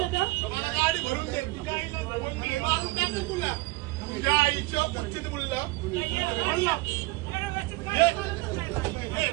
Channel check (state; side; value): quieter; left; 21.9 dB